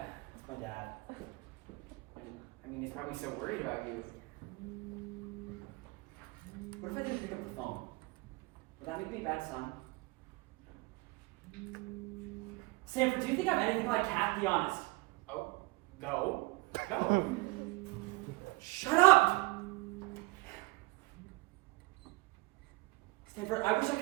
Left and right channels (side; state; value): left; quieter; 24.1 dB